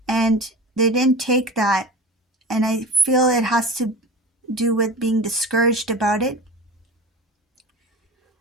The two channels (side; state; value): both; normal; correlation 0.32